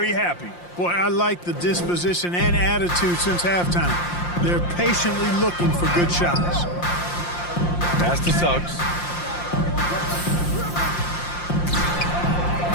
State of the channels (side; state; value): right; late; 5.7 ms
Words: happy. Boy, I like the disposition and attitude since halftime. They're patiently looking for good shots. Pass to Suggs.